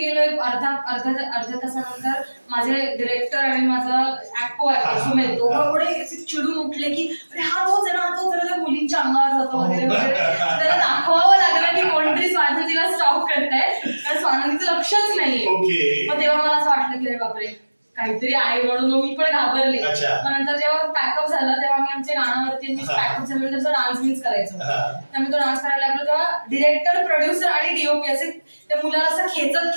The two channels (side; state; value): both; inverted; correlation -1.00